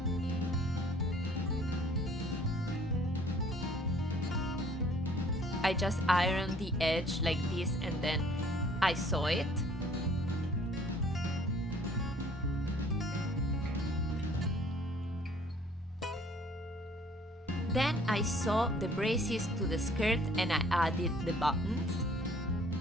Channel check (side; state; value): both; normal; correlation 0.57